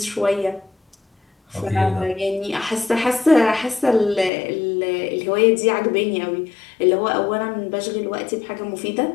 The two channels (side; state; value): right; drops out; at 4.3 s